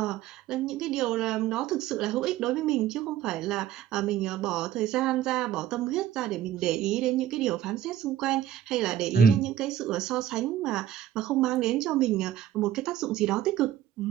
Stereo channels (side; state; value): left; quieter; 11.2 dB